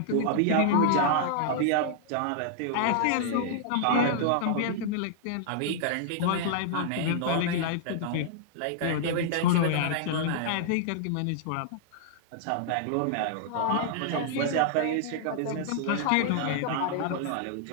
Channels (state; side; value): different; both; correlation -0.01